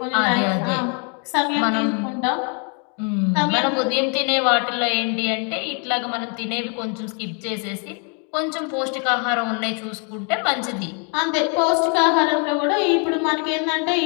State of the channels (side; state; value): right; quieter; 38.1 dB